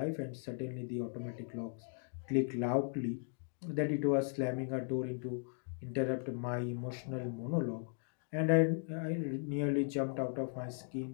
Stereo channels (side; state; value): right; silent; 53 dB below the other